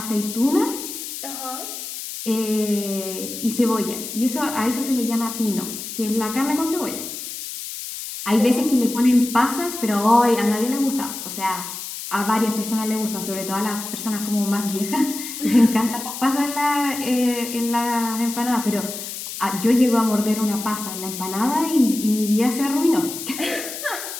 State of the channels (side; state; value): left; noise; hiss, 8 dB below the sound